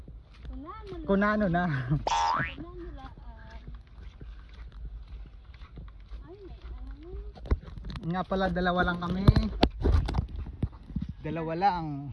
Kunano na. Nga pala, dalawa lang kami. Dalawa lang.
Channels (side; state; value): both; identical; correlation 1.00